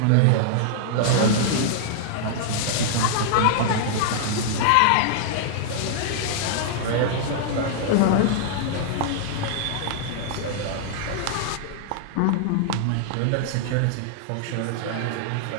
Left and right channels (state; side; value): different; both; correlation -0.01